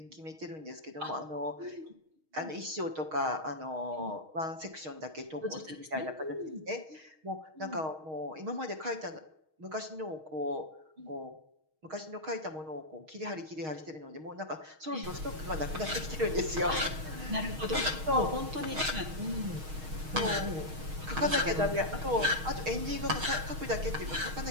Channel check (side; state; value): left; late; 6.4 ms